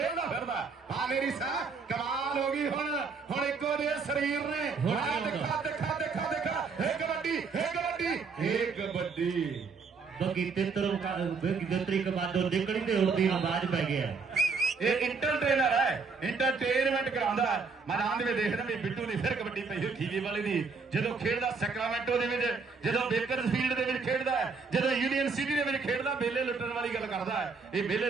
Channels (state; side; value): quieter; left; 4.8 dB